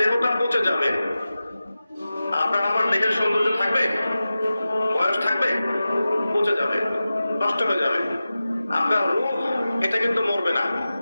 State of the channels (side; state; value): both; inverted; correlation -0.94